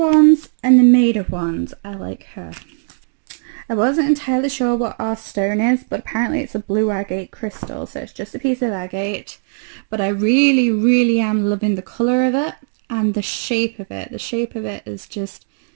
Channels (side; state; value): left; silent; digital silence